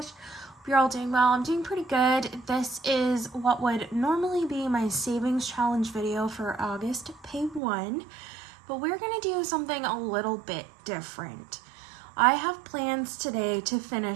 you're all doing well. I'm doing pretty good. This is what would normally be my savings challenge video for August pay 1, but we're going to do something a little bit different. I have plans today to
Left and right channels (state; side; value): drops out; left; at 7.6 s